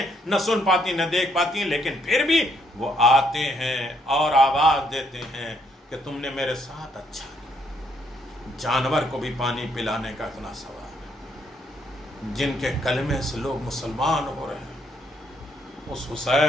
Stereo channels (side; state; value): both; normal; correlation 0.71